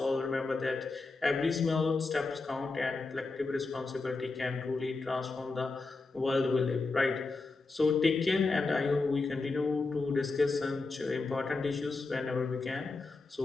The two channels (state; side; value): quieter; right; 3.8 dB